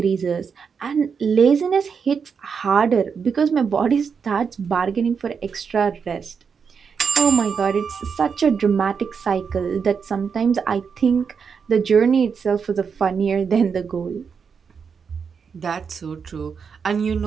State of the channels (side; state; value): left; quieter; 6.1 dB